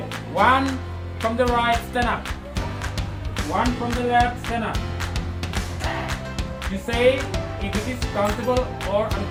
One from the right, stand up. One from the left, stand up. You say if it is countable or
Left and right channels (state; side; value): identical; both; correlation 1.00